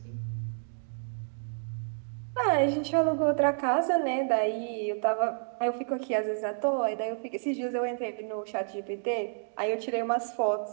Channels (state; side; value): silent; left; digital silence